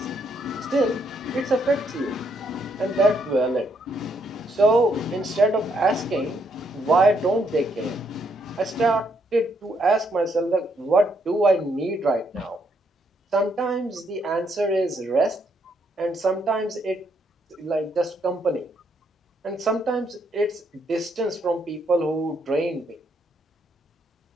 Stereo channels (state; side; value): normal; both; correlation 0.74